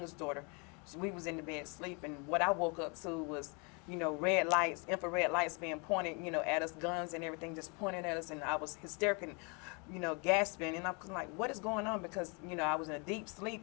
daughter, we was in the bed sleep, and what I woke up to was red lights, infrared lights being pointed at us, guns and everything just pointing at us, and I was hysterical, gasping, and I was like, what is going on? Because I was in a deep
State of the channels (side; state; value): right; quieter; 33.2 dB